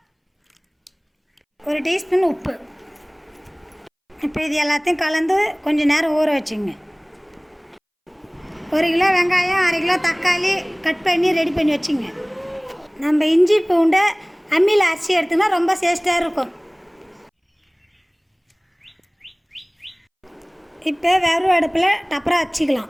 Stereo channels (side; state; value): both; identical; correlation 1.00